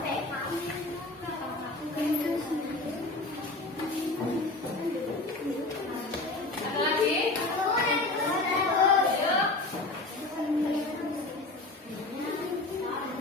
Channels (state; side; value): quieter; right; 3.1 dB